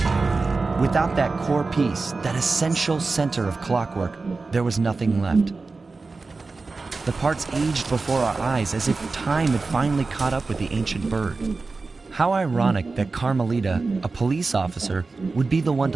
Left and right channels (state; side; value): quieter; left; 3.9 dB